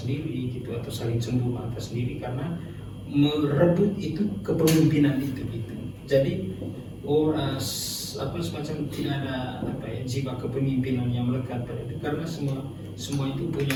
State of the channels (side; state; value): both; identical; correlation 1.00